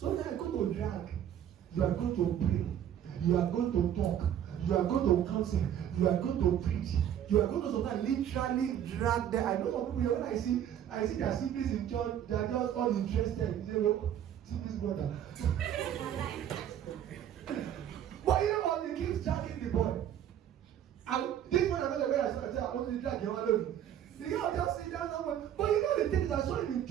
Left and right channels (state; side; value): quieter; left; 10.2 dB